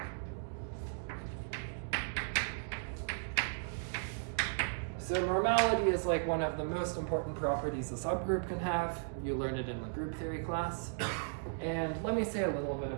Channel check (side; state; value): left; silent; digital silence